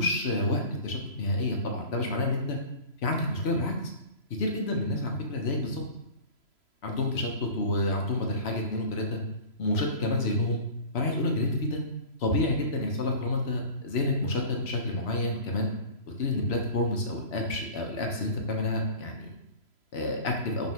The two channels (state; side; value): late; right; 3.0 ms